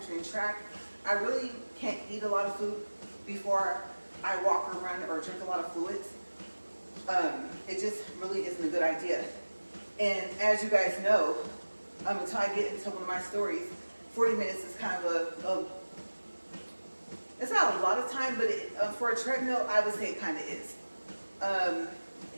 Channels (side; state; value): both; inverted; correlation -1.00